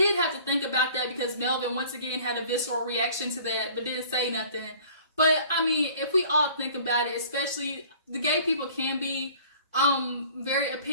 have to think about that because Melvin, once again, had a visceral reaction to that, but didn't say nothing. But, if we all think about it, especially the gay people can be very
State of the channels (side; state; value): both; inverted; correlation -0.50